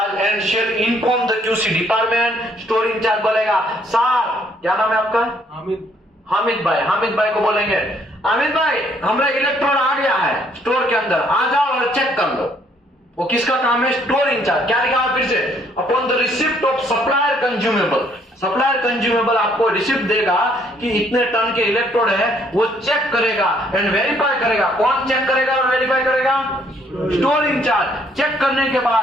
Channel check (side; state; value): both; normal; correlation 0.66